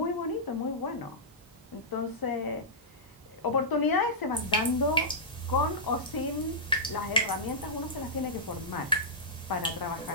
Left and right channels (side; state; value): both; normal; correlation -0.14